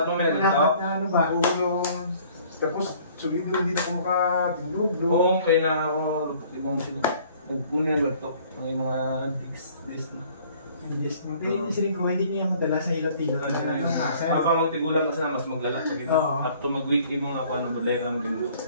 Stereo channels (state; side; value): inverted; both; correlation -0.55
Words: mo meron na ano ba? Oo, tapos sulido hindi na ako makatindog. Oo, kaya na ako emotion. Nagpunin ba ito? Ang mga disc. Hindi ko, hindi niya madala sa hilot-hilot. Habang magtigulan kasi na mas maglala. Up to mag-week yung mga ako, model lang din mo.